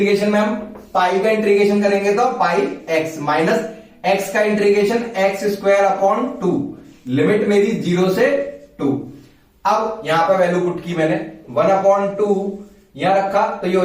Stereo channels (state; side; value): identical; both; correlation 1.00